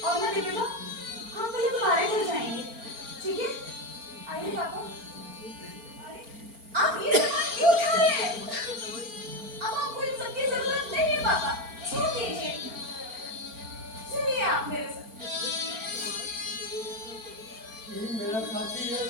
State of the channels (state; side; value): late; left; 4.4 ms